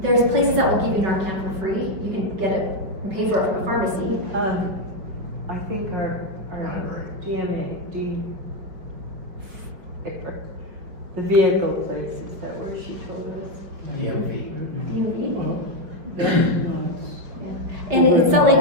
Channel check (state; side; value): late; left; 5.2 ms